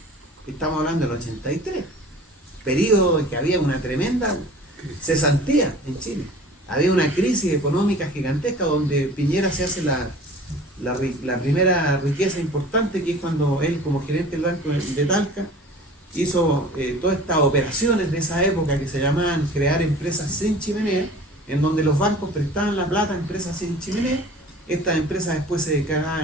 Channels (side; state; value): both; normal; correlation 0.43